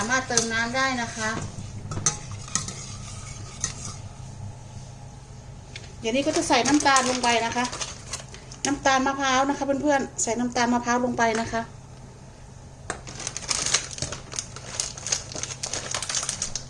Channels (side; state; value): both; identical; correlation 1.00